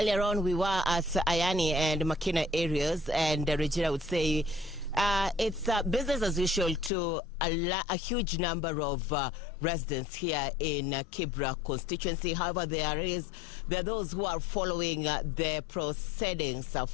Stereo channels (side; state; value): right; drops out; at 6.9 s